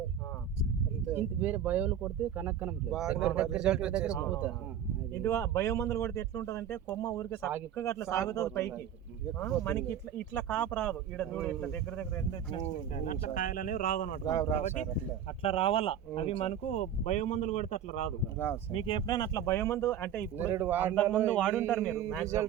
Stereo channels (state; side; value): quieter; left; 9.0 dB